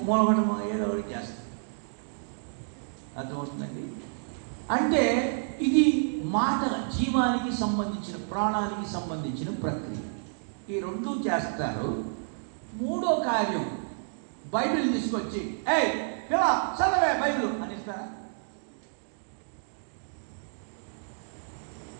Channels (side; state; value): left; silent; digital silence